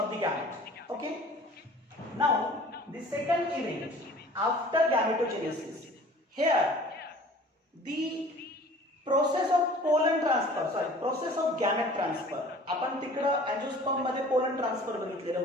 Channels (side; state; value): both; normal; correlation 0.47